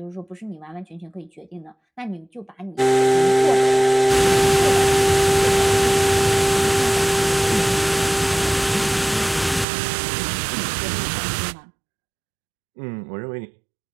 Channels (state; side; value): drops out; left; at 9.7 s